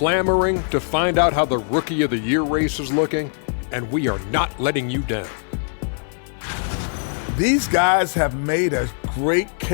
to find out how the Rookie of the Year race is looking, and we are not letting you down. These guys have made a great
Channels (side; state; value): right; silent; 55 dB below the other